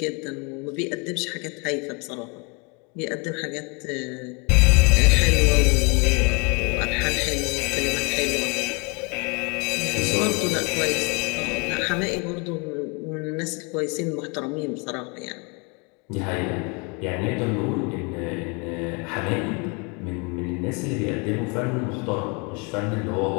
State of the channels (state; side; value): quieter; right; 32.0 dB